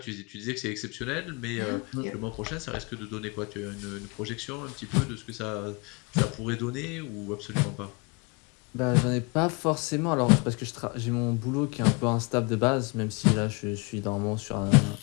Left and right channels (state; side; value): quieter; right; 29.8 dB